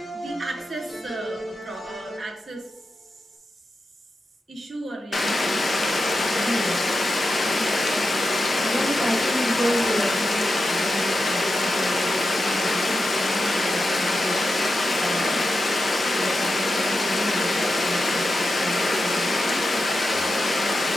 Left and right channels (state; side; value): normal; both; correlation 0.90